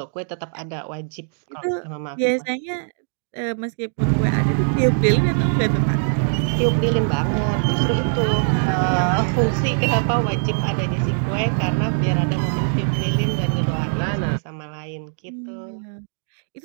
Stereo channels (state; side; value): silent; left; digital silence